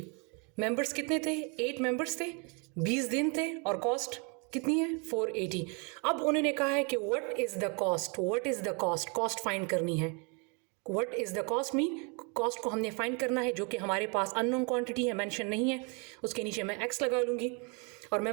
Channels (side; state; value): left; quieter; 34.0 dB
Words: मेंबर्स कितने थे, 8 मेंबर्स थे, 20 दिन थे और कॉस्ट कितनी है, 480। अब उन्होंने कहा है कि what is the cost, what is the cost, cost find करनी है। What is the cost mean cost को हमने फाइंड करना है, जो कि हमारे पास अननोन क्वांटिटी है, मेंशन नहीं है। उसके नीचे मैं एक्स लगा लूँगी। और